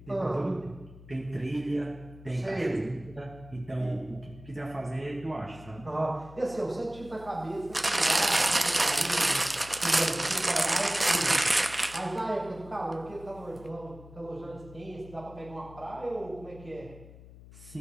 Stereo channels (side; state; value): left; noise; hum, 18 dB below the sound